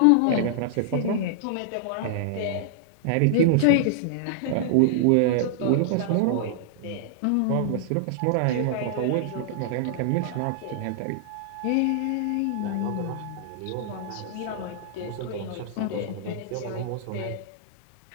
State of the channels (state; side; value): different; both; correlation -0.01